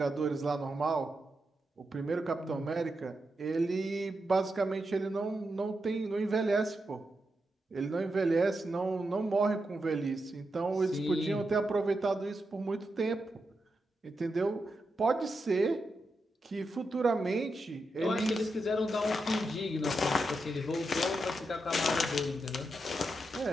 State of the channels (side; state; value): both; normal; correlation 0.86